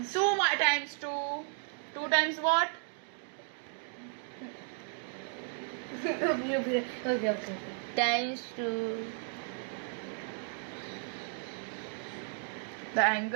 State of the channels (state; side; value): silent; left; 55 dB below the other